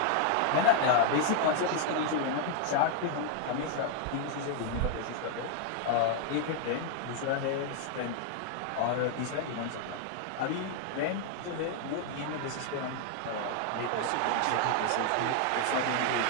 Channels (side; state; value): both; different; correlation 0.00